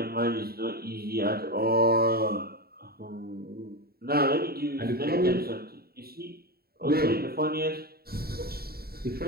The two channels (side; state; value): left; late; 0.45 ms